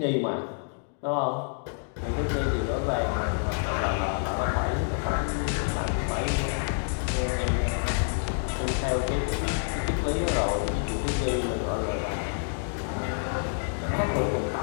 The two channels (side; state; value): right; silent; digital silence